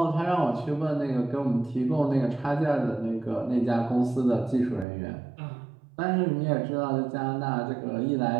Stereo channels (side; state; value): left; drops out; at 4.9 s